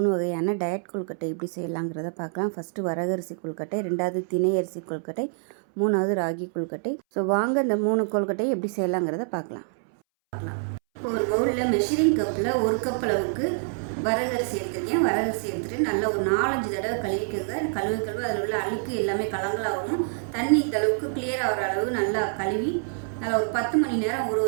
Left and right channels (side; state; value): left; silent; 61 dB below the other